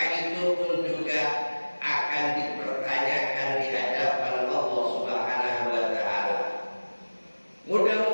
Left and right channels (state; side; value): inverted; both; correlation -1.00